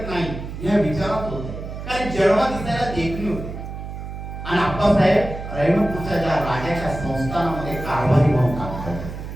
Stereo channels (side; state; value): right; noise; hum, 9 dB below the sound